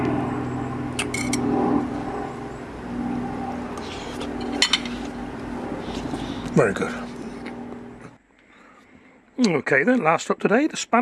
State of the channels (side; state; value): both; identical; correlation 1.00